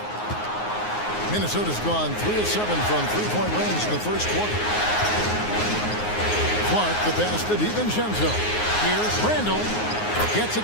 Minnesota's gone 3 of 7 from three-point range in the first quarter. Clark the pass to DiVincenzo. Here's Randall. Gets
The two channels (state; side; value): late; right; 9.5 ms